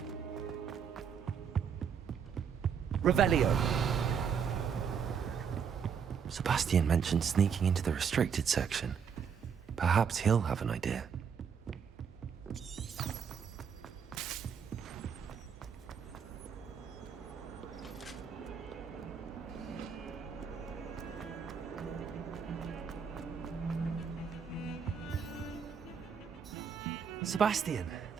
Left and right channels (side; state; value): left; quieter; 7.0 dB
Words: Revelio. Sebastian mentioned sneaking into the restricted section. Perhaps he'll have an idea. Sebastian,